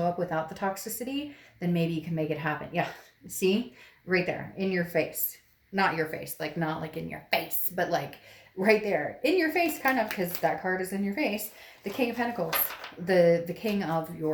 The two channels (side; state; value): both; identical; correlation 1.00